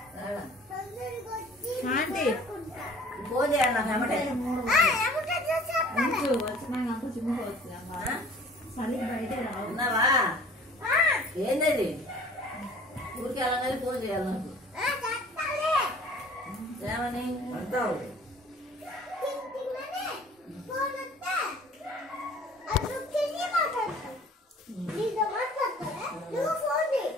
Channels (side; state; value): both; normal; correlation 0.49